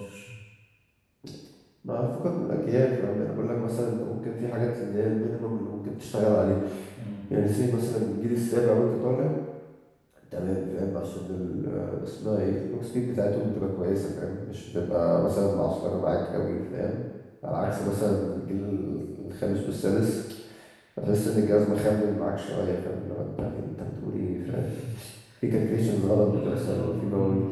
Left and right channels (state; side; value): identical; both; correlation 1.00